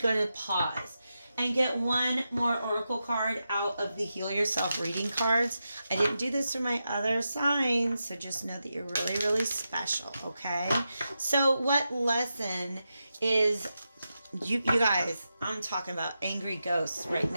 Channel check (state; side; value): inverted; both; correlation -0.89